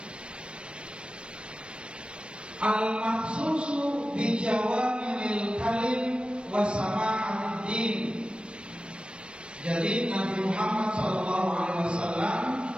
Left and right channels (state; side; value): late; left; 0.056 ms